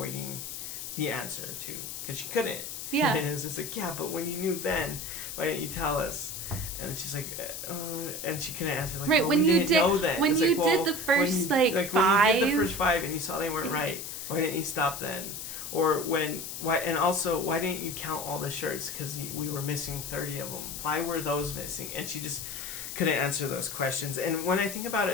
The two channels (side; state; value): left; noise; hiss, 7 dB below the sound